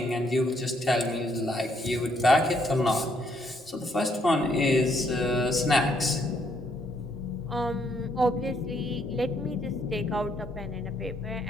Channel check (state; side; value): normal; both; correlation 0.71